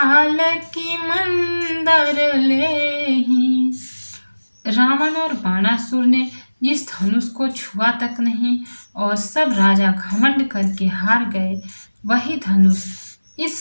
की मंदर लेहि। रावण और बाणासुर ने जिस धनुष को छुआ तक नहीं और सब राजा घमंड करके हार गए, वही धनुष इस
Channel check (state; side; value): inverted; both; correlation -1.00